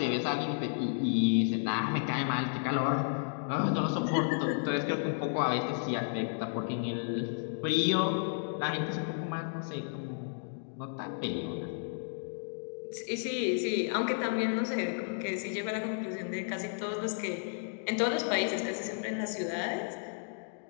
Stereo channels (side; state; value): right; silent; digital silence